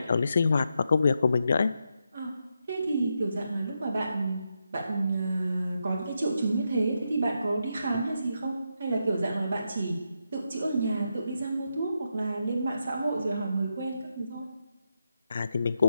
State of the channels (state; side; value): inverted; both; correlation -0.84